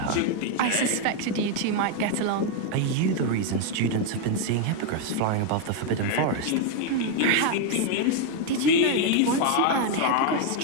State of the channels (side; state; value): both; different; correlation 0.01